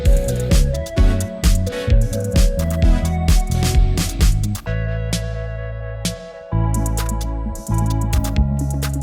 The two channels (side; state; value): both; identical; correlation 1.00